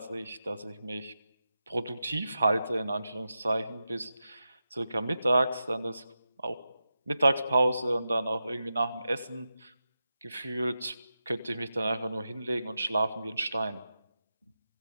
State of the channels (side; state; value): both; inverted; correlation -0.90